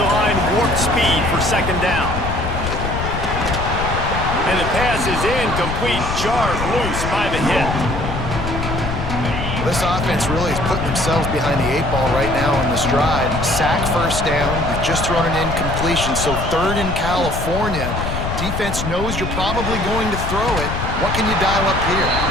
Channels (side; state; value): left; noise; rumble, 4 dB below the sound